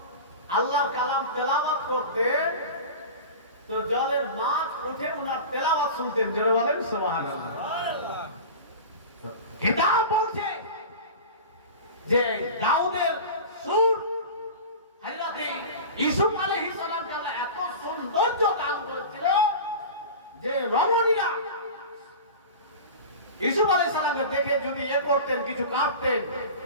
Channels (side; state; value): both; inverted; correlation -0.32